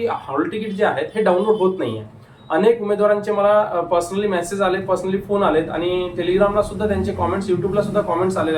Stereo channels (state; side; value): identical; both; correlation 1.00